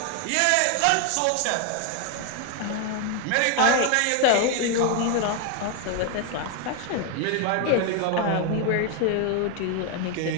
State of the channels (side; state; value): both; different; correlation 0.01